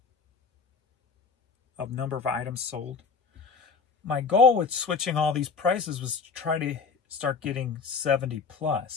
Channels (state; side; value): quieter; right; 5.2 dB